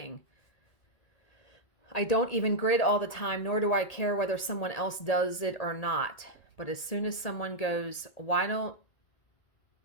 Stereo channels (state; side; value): late; right; 1.8 ms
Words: I don't even grid all the time, nor do I care whether someone else does it or not. But as soon as someone goes, why don't